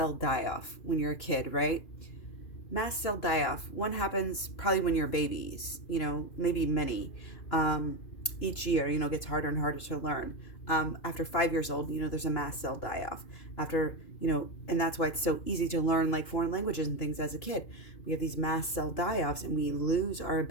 die-off when you're a kid, right? Mast cell die-off. One happens probably when you're babies, you know, maybe many. Each year, you know, gets harder and harder to learn. After 5 years old, you know, there's a mast cell die-off. After, you know, and that's why it's so easy to learn like foreign languages and things as a kid. We have these mast cell die-offs, and we lose our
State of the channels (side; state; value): right; late; 2.9 ms